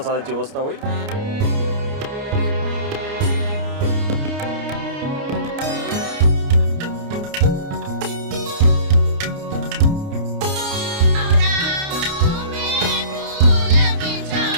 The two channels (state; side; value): late; left; 29 ms